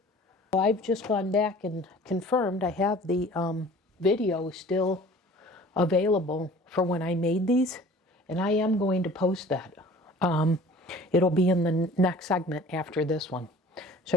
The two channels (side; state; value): both; normal; correlation 0.47